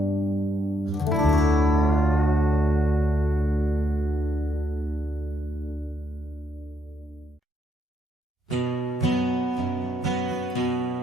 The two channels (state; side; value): normal; both; correlation 0.75